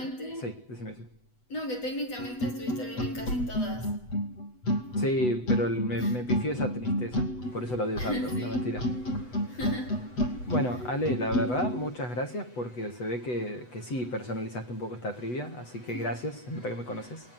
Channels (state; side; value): late; right; 8.1 ms